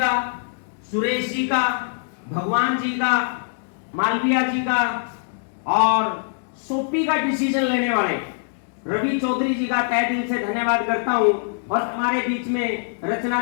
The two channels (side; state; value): right; silent; digital silence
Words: सुरेश जी का, भगवान जी का, मालविया जी का और सोपी का डिसीजन लेने वाले रवि चौधरी जी का तहे दिल से धन्यवाद करता हूं। और हमारे बीच में रचना